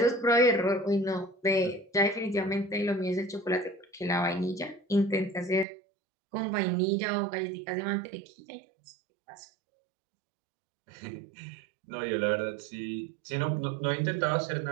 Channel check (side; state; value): left; drops out; at 5.7 s